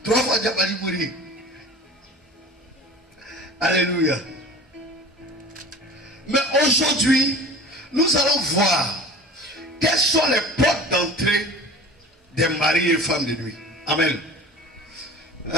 3 fois, j'ai pas dit mourir. Alléluia. Mais aujourd'hui, nous allons voir quelles sont les portes d'entrée des maris et femmes de nuit. Amen.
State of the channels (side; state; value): both; normal; correlation 0.39